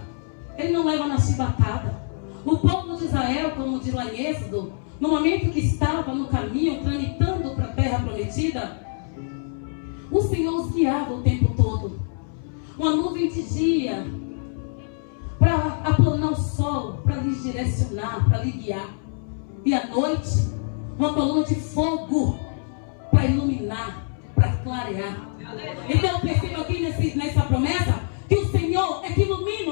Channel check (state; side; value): silent; right; 62 dB below the other